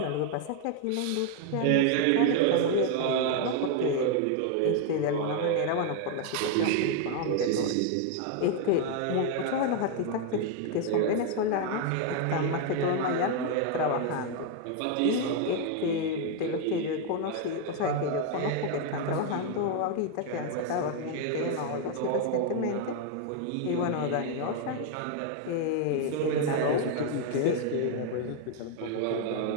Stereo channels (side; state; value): both; different; correlation 0.00